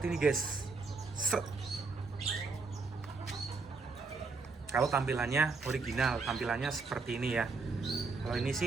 ini guys. Set. Kalau tampilannya original, tampilannya seperti ini ya. Kalau ini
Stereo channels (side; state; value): left; quieter; 4.2 dB